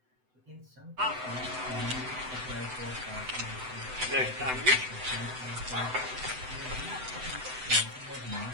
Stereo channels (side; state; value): left; late; 7.9 ms